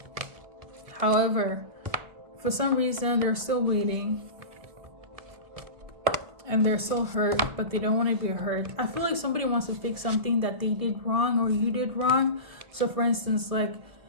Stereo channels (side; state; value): left; late; 1.7 ms